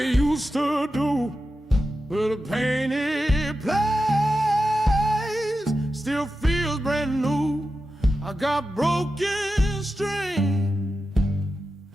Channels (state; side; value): normal; both; correlation 0.91